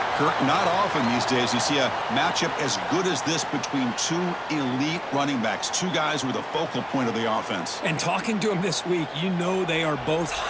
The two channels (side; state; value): both; identical; correlation 1.00